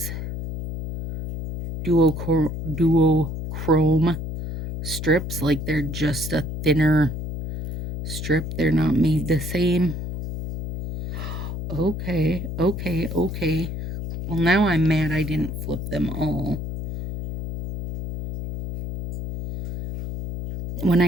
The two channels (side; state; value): left; noise; hum, 6 dB below the sound